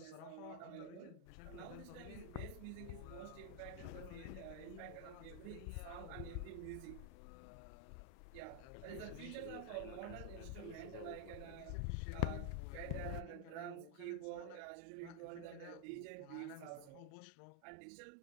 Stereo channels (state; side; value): different; both; correlation 0.00